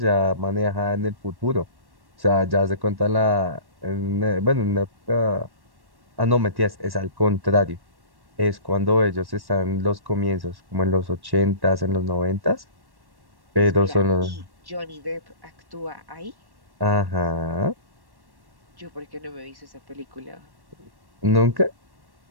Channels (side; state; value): left; late; 1.1 ms